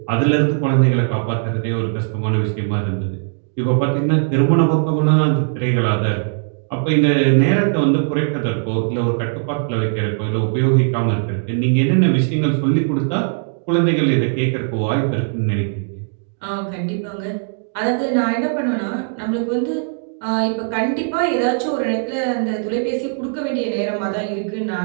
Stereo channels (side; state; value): left; silent; digital silence